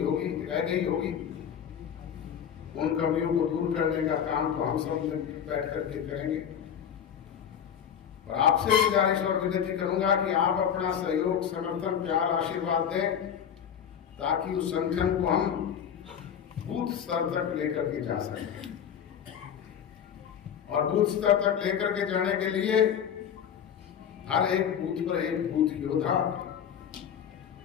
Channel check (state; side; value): quieter; right; 8.5 dB